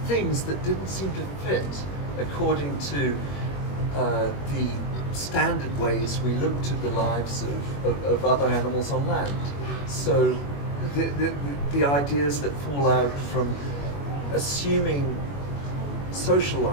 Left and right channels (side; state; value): right; late; 21 ms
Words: things that didn't seem to fit according to the standard ways we looked at the lives of other animals on land. So the ideas that fall out from assuming social